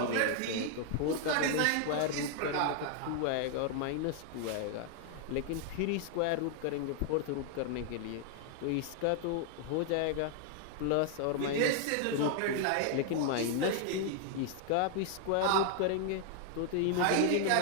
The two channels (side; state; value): both; different; correlation 0.00